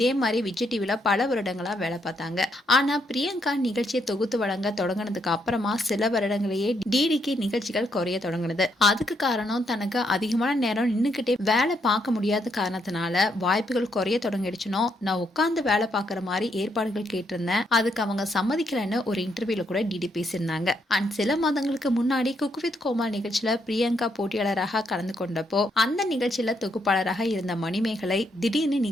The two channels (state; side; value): normal; both; correlation 0.76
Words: மாதிரி விஜய் டிவில பல வருடங்களா வேலை பார்த்தாங்க. ஆனா பிரியங்கா நிகழ்ச்சியை தொகுத்து வழங்க தொடங்கினதுக்கு அப்புறமா சில வருடங்களையே டிடிக்கு நிகழ்ச்சிகள் குறைய தொடங்கினது. அதுக்கு காரணம் தனக்கு அதிகமான நேரம் நின்னுக்கிட்டே வேலை பார்க்க முடியாத காரணத்தினால வாய்ப்புகள் குறைய தொடங்கிடுச்சுனோ, நான் உட்கார்ந்து வேலை பார்க்குற மாதிரி ஏற்பாடுகள் கேட்டிருந்தேன், அதுக்கு அவங்க சம்மதிக்கலன்னு ஒரு இன்டர்வியூல கூட டிடி பேசியிருந்தாங்க. அண்ட் சில மாதங்களுக்கு முன்னாடி குக் வித் கோமால் நிகழ்ச்சியில பிரியங்கா போட்டியாளராக கலந்து கொண்டப்போ அந்த நிகழ்ச்சியில தொகுப்பாளராக இருந்த மணிமேகலை திடீர்னு